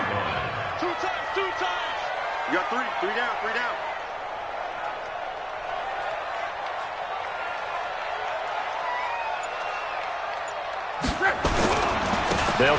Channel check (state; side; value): identical; both; correlation 1.00